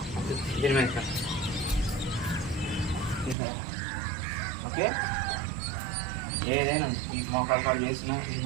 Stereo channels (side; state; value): left; drops out; at 3.4 s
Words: ఓకే. ఏదైనా ఈ మోకాలు కాలు చేసినా, ఈ